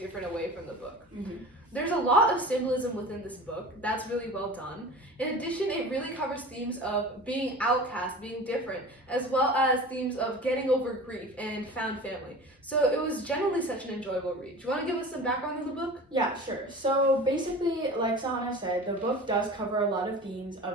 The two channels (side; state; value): both; normal; correlation 0.37